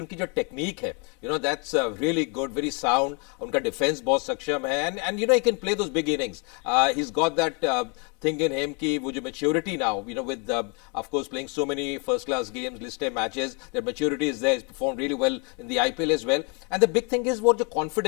उनकी जो टेक्निक है, that's really good, very sound. उनका डिफेंस बहुत सक्षम है, and he can play those big innings. He's got that thing in him कि वो जो maturity now, with of course playing so many first class games, listed matches, their maturity is there. He's performed really well in the IPL as well. And the big thing is what the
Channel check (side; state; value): right; quieter; 34.7 dB